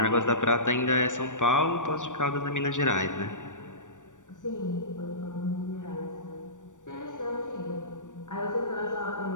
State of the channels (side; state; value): right; late; 0.87 ms